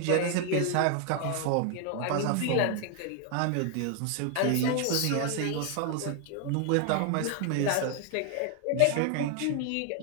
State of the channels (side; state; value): both; different; correlation 0.00